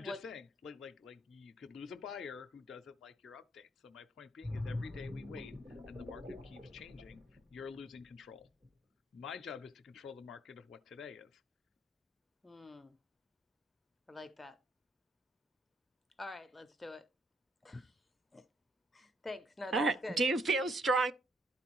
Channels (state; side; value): normal; both; correlation 0.70